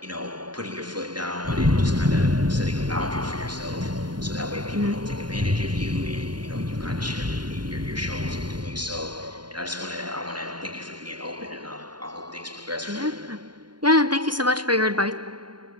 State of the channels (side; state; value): left; late; 0.71 ms